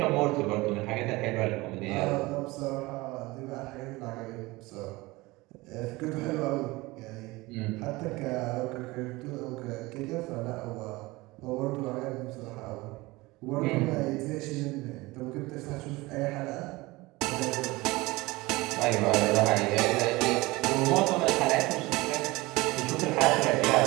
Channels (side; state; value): left; quieter; 21.5 dB